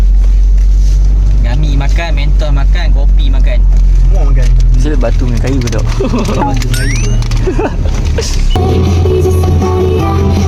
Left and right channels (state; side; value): identical; both; correlation 1.00